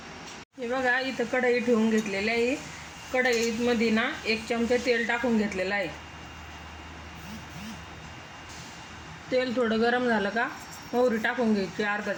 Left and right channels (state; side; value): identical; both; correlation 1.00